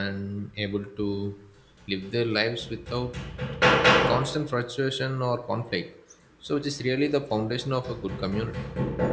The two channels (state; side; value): identical; both; correlation 1.00